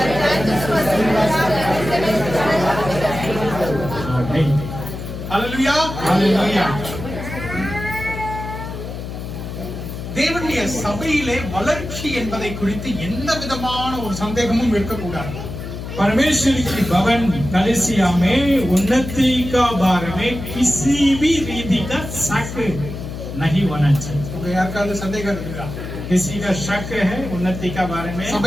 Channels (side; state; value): left; noise; hum, 8 dB below the sound